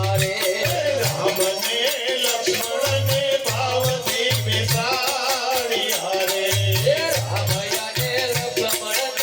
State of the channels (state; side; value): identical; both; correlation 1.00